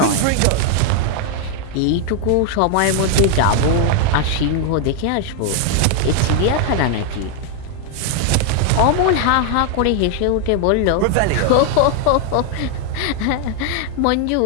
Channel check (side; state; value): both; different; correlation 0.00